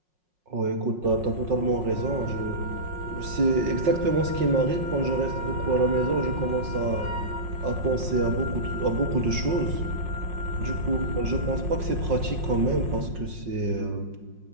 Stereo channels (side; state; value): left; late; 5.5 ms